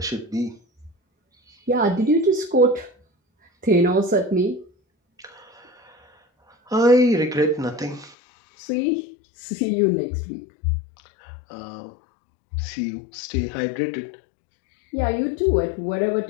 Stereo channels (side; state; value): right; drops out; at 8.2 s